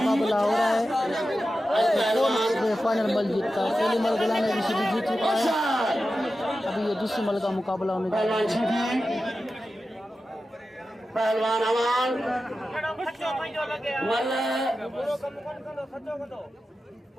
हो रहा है। फाइनल मल जीतता है। पहली मल गुलाम रशीदी जीत चुका है। अभी ये दूसरी मल का मुकाबला होने जा रहा है। पहलवान अवान मल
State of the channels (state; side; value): normal; both; correlation 0.92